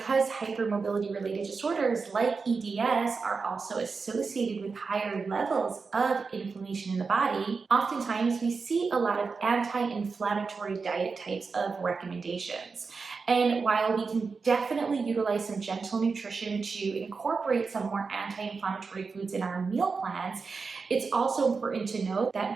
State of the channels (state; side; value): quieter; left; 4.7 dB